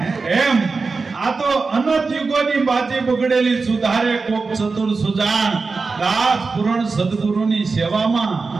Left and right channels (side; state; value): left; quieter; 4.3 dB